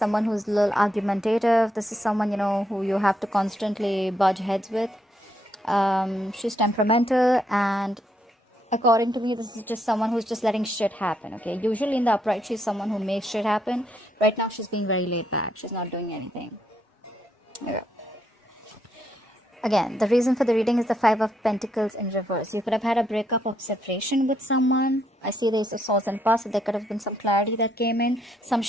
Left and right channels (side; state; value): both; normal; correlation 0.76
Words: who's a little argumentative. This is someone, who you have to constantly budge heads with. She's temperamental, and according to me, this is just someone who's just letting shit happen, okay? Usually in the upright, she's someone who makes shit happen. Right now, she's being very laid back. She's not doing anything. Okay. Again, the reason for the reading is the Five of Pentacles in reverse. You could have had a breakup or separation with someone. I see the Ace of Swords in past, so there could have been some clarity that came in, some